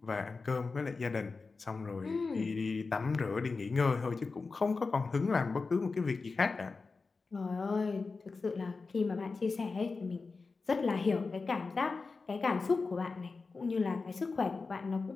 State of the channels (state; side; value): quieter; right; 4.2 dB